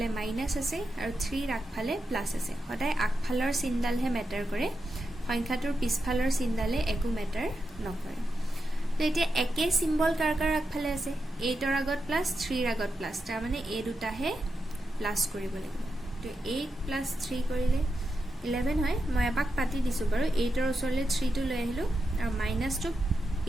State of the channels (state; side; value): normal; both; correlation 0.87